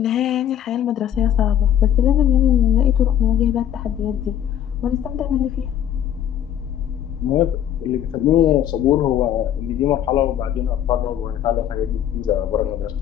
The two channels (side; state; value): right; quieter; 10.3 dB